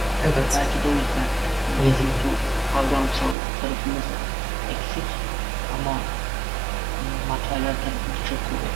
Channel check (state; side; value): drops out; left; at 3.4 s